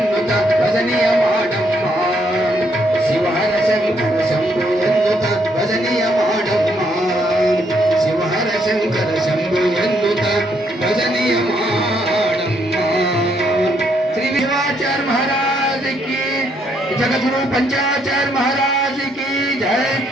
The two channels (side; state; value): both; normal; correlation 0.72